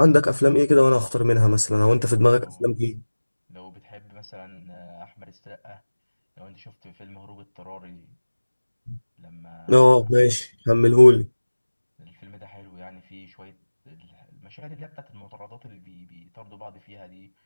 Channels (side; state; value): both; inverted; correlation -1.00